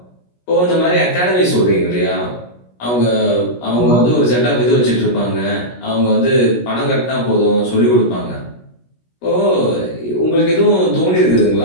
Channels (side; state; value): right; late; 17 ms